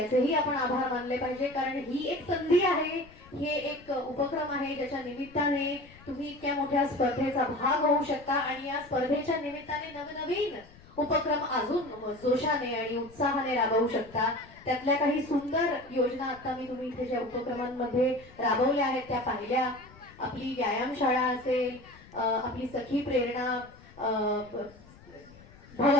आपण आभार मानले पाहिजे. कारण ही एक संधी आहे, हे एक उपक्रम आहे ज्याच्या निमित्ताने तुम्ही इतक्या मोठ्या स्पर्धेचा भाग होऊ शकता आणि या स्पर्धेच्या निमित्ताने नवनवीन उपक्रम अजून जोशाने आणि उत्साहाने राबवू शकता. त्यातल्या काही सुंदर योजना आता मी तुम्ही इथे ज्या उपक्रमांमध्ये राबवल्या आहेत त्या पाहिल्या. आपली व्यायामशाळा असेल, आपली सखी प्रेरणा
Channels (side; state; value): left; noise; rumble, 22 dB below the sound